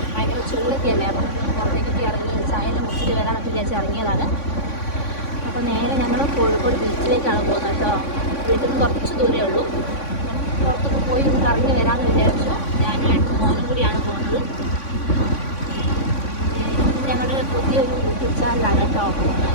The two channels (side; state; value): right; late; 3.5 ms